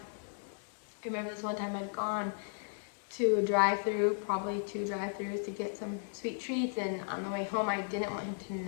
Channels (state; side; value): silent; right; digital silence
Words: remember this one time I'd gone to a drive-through, probably 2 drive-throughs, to get some sweet treats, and on the way home I didn't want him to